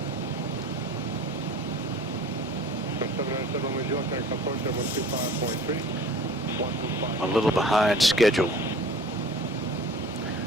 A little behind schedule. South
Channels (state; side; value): normal; both; correlation 0.44